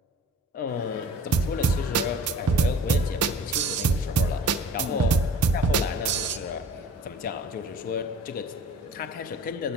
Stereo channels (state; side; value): normal; both; correlation 0.45